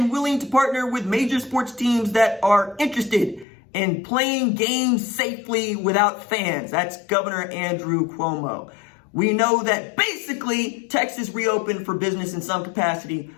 willing to partner with major sports teams that are interested in playing games safely without fans. That's Governor Andrew Cuomo. We know that basically Texas reopened for business in some capacity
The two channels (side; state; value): right; drops out; at 3.5 s